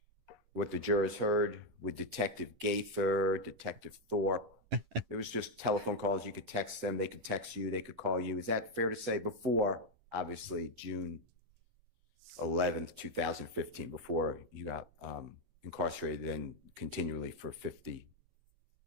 what the jurors heard, with Detective Gaither, Detective Thorpe. It was just telephone calls. You could text them. They could text you. They could call you. Is that fair to say? Before, obviously, June 11th, 2015, before you got incarcerated and continually for 60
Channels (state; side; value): late; left; 9.8 ms